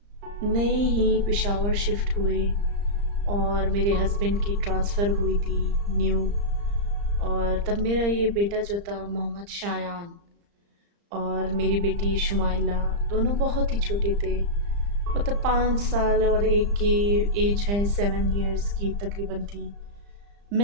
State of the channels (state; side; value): late; left; 35 ms